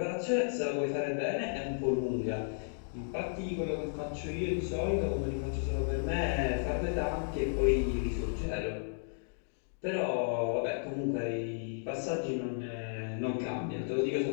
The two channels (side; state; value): right; silent; digital silence